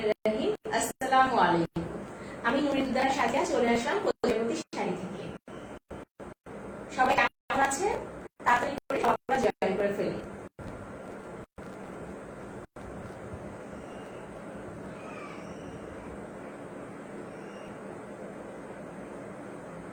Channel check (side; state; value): both; identical; correlation 1.00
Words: রহিম। আসসালামু আলাইকুম। আমি নুরিদুদ্দার সাথে চলে আসলাম প্রজাপতি শাড়ি থেকে। সবাই কেমন আছেন? তাড়াতাড়ি করে সবাই জয়েন করে ফেলি।